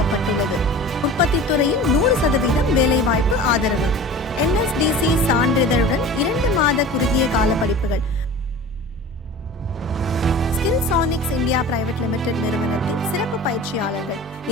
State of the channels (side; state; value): both; normal; correlation 0.38